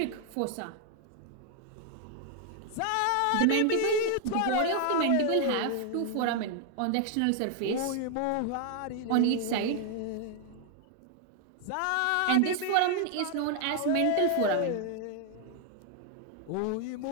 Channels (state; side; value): different; both; correlation 0.00